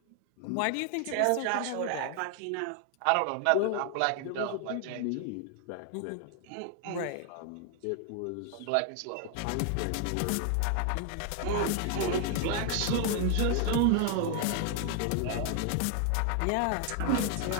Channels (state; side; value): different; both; correlation 0.00